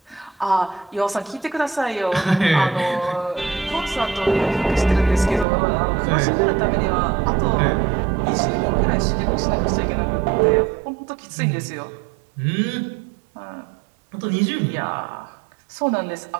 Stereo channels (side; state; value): left; drops out; at 5.5 s